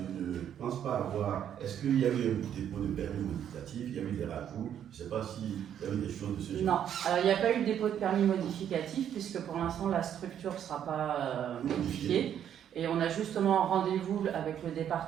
ne pense pas avoir. Est-ce qu'il y a eu un dépôt de permis modificatif, il y a eu des rajouts, je ne sais pas s'il y a eu des choses de ce genre. Non, alors il n'y a pas eu de dépôt de permis modificatif, puisque pour l'instant la structure ne sera pas modifiée. Et on a justement rendez-vous avec le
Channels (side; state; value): left; quieter; 9.6 dB